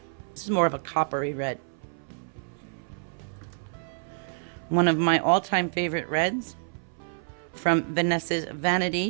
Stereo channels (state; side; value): silent; left; 59 dB below the other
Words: This is more of a coppery red. One of my all-time favorite reds from Vanessa's